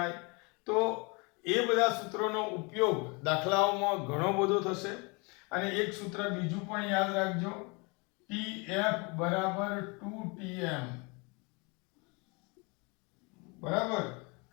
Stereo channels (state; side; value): quieter; right; 30.0 dB